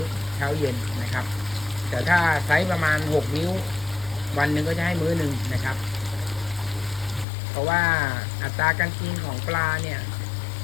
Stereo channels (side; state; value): right; drops out; at 7.2 s